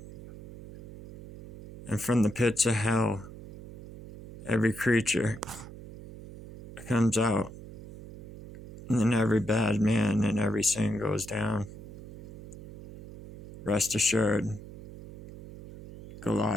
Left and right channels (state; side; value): noise; right; hum, 15 dB below the sound